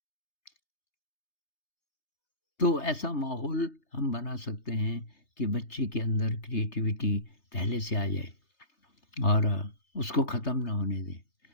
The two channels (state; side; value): late; right; 3.3 ms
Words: तो ऐसा माहौल हम बना सकते हैं कि बच्चे के अंदर क्रिएटिविटी पहले से आ जाए, और उसको ख़त्म ना होने दें।